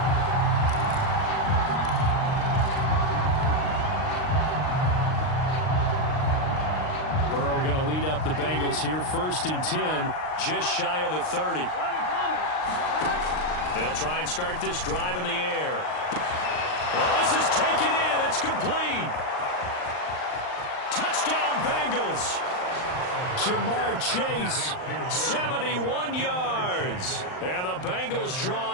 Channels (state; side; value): late; right; 39 ms